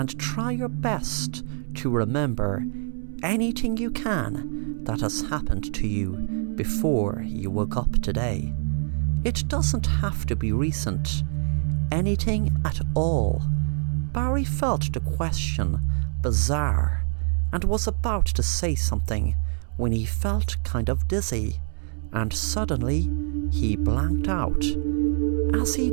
try your best to remember anything you can that has happened to you before you woke up today. It doesn't have to be recent. Anything at all." Barry felt the question bizarre and was about to say something when he felt kind of dizzy, and suddenly he blanked out. As he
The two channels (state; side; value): silent; left; digital silence